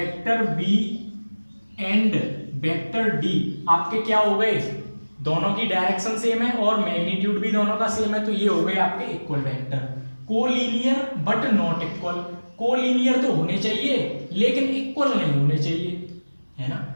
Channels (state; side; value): inverted; both; correlation -1.00